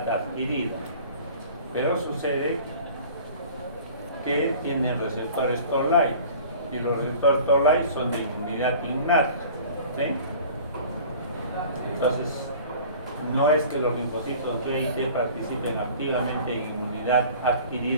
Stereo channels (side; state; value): both; inverted; correlation -0.45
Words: adquirida, pero sucede que tienen receptores Toll-like y los receptores Toll-like son de inmunidad innata, ¿sí? Entonces, no es que los linfocitos B y T participen activamente en inmunidad